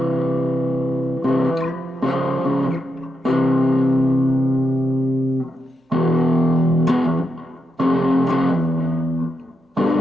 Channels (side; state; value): both; normal; correlation 0.85